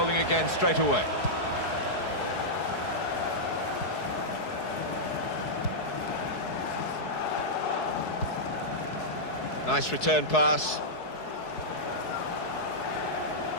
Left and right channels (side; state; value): right; late; 4.7 ms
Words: again straight away. Nice return pass.